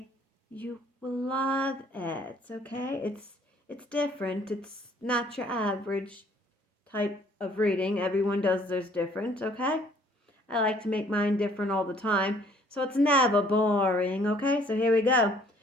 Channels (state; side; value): normal; both; correlation 0.59